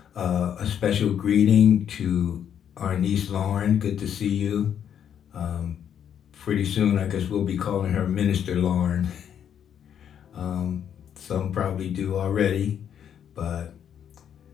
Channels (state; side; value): quieter; right; 9.0 dB